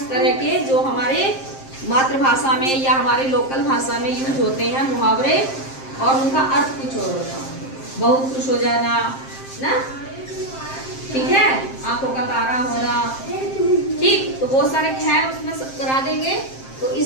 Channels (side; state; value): right; late; 7.6 ms